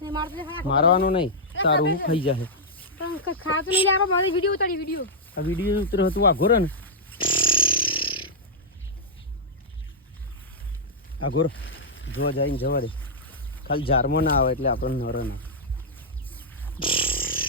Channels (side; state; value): both; normal; correlation -0.08